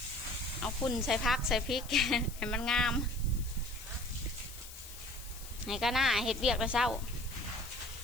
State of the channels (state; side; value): noise; left; hiss, 15 dB below the sound